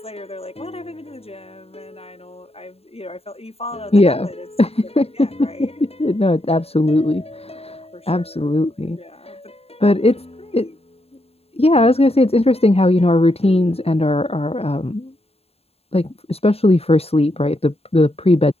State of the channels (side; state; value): right; late; 0.29 ms